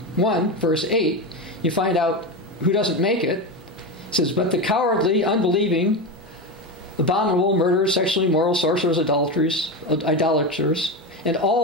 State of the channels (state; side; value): normal; both; correlation 0.17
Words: verse 8, you find out who doesn't make it. It says, but the cowardly, unbelieving, abominable, murderers, sexually immoral, sorcerers, idolaters, and